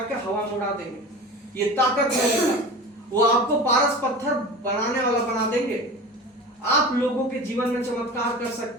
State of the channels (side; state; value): both; normal; correlation 0.34